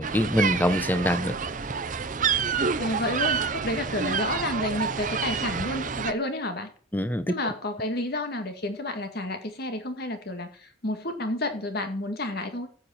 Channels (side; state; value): both; normal; correlation 0.33